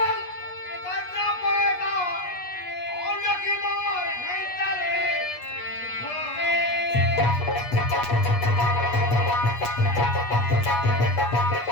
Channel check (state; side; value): late; right; 8.3 ms